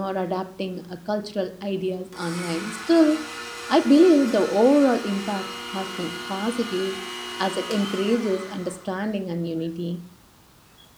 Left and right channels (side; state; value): both; identical; correlation 1.00